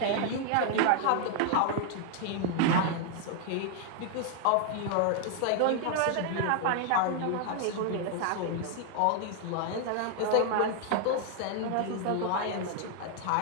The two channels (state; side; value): different; both; correlation 0.00